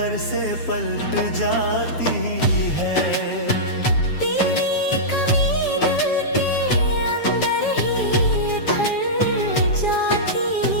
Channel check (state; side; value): late; right; 7.2 ms